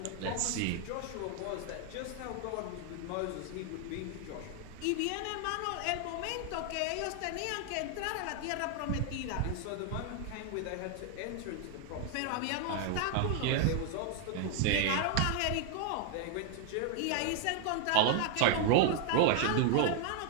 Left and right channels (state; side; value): different; both; correlation 0.00